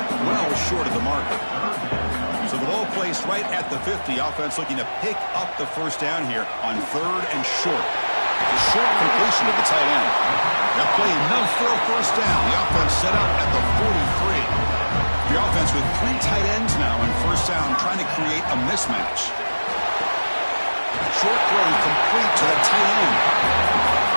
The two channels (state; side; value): inverted; both; correlation -1.00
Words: well short of the marker. So the ball placed right at the 50. Offense looking to pick up the first down here on 3rd and short. It's a short completion to the tight end. That play enough for a first down. The offense set up at the 43. The offense with 3 tight ends now in first down, trying to create a mismatch. Short throw complete to the tight end.